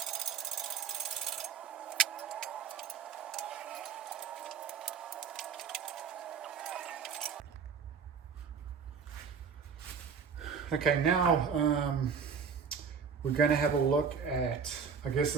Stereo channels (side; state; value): left; quieter; 6.3 dB